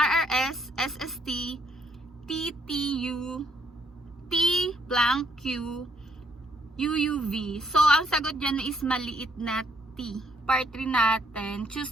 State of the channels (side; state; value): both; normal; correlation 0.70